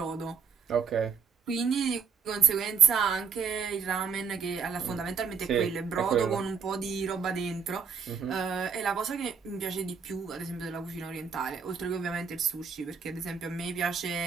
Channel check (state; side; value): quieter; left; 6.2 dB